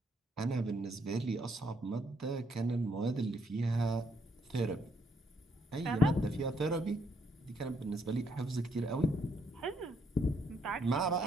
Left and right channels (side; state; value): both; normal; correlation 0.72